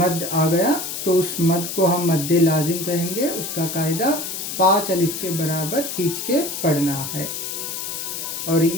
आ गया तो उस मद को हम मद्द लाजिम कहेंगे। उसका कायदा 5 अलिफ के बराबर खींच के पढ़ना है। और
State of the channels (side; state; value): left; noise; hiss, 5 dB below the sound